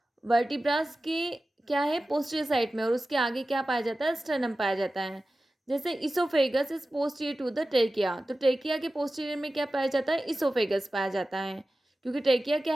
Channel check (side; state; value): both; normal; correlation 0.95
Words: वर्टिब्रास के क्या है? पोस्टीरियर साइड में, और उसके आगे क्या पाया जाता है? स्टर्नम पाया जाता है। जैसे oesophagus is posterior to the trachea. तो ट्रेकिया के पोस्टीरियर में क्या पाया जाता है? इसोफेगस पाया जाता है, क्योंकि ट्रेकिया क्या